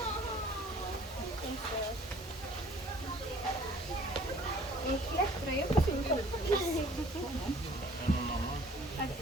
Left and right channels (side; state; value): both; normal; correlation 0.54